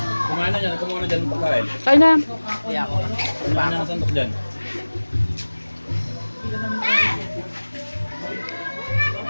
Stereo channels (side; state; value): both; inverted; correlation -1.00